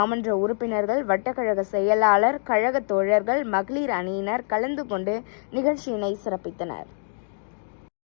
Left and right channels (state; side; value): silent; right; digital silence